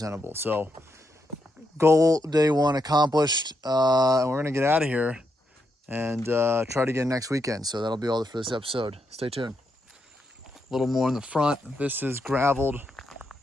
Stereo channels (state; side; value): normal; both; correlation 0.81